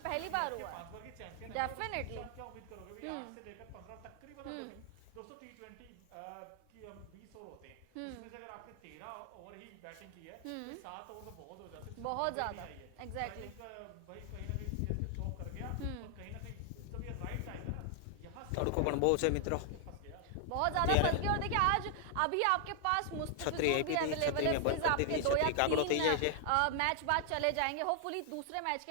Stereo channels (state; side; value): different; both; correlation 0.00